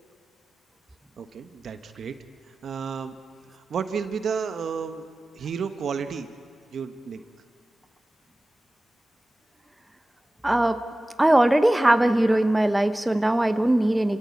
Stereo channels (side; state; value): both; normal; correlation 0.97